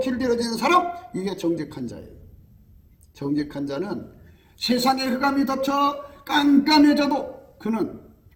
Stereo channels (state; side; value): identical; both; correlation 1.00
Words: 길들여지는 사람, 이게 정직한 자예요. 정직한 자는 세상의 흑암이 덮쳐 깜깜해져도 그는